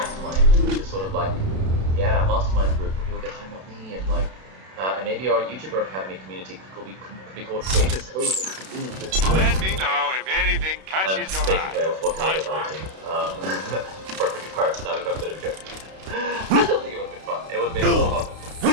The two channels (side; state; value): left; late; 32 ms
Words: which is sort of mastermind group where people get to hang out with me and maybe our YouTuber Academy community could be called Creators Code, and we could move this. Let me know if anything catches your eye. Basically, I was talking about the team. Perfectly Pirates now become a bit of a joke. I don't think it would have been fun. It would have been more fun.